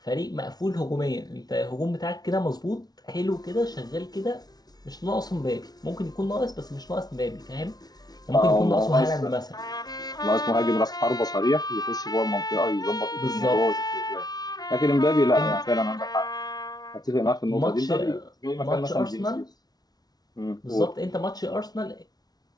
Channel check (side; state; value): right; late; 0.19 ms